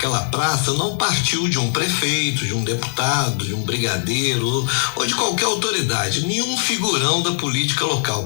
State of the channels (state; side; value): silent; right; 66 dB below the other